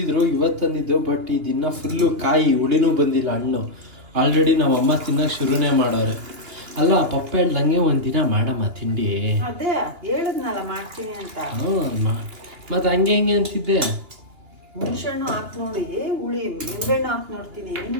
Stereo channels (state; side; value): late; left; 2.8 ms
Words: ಇವತ್ತು ತಂದಿದ್ದು. ಬಟ್ ಇದನ್ನ ಫುಲ್ಲು ಕಾಯಿ ಹುಳಿನೂ ಬಂದಿಲ್ಲ ಹಣ್ಣು. ಆಲ್ರೆಡಿ ನಮ್ಮಮ್ಮ ತಿನ್ನಕ್ಕೆ ಶುರುನೇ ಮಾಡೋರೆ. ಅಲ್ಲ ಪಪ್ಪ ಹೇಳ್ದಂಗೆ ಒಂದಿನ ಮಾಡಮ್ಮ ತಿಂಡಿ. ಅದೇ ಹೇಳಿದ್ನಲ್ಲ ಮಾಡ್ತೀನಿ ಅಂತ. ಮತ್ತೆ ಹಂಗೆ ಹಿಂಗೆ ಅಂತಿದ್ದೆ. ಹುಣಸೆಹಣ್ಣು ಹಾಕಿ ನೋಡಿ, ಹುಳಿ ನಿಂಬೆಹಣ್ಣು ಹಾಕಿ ನೋಡ್ತೀನಿ.